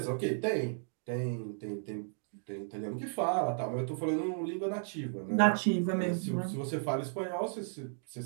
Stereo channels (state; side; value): silent; left; digital silence